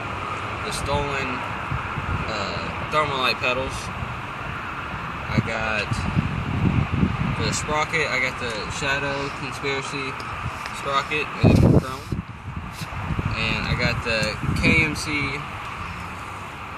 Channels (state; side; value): identical; both; correlation 1.00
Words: the stolen Thermalite pedals. I got the sprocket. I got the Shadow Conspiracy sprocket in chrome. And I got the KMC